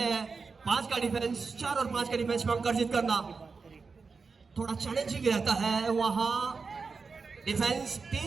हैं। 5 का डिफेंस, 4 और 5 का डिफेंस में अंक अर्जित करना थोड़ा चैलेंजिंग रहता है। वहां डिफेंस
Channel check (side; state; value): left; quieter; 4.8 dB